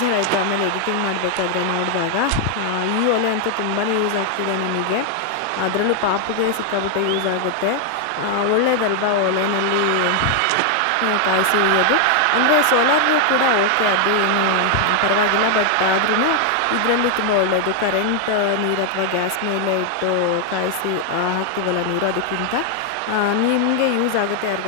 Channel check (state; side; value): different; both; correlation 0.00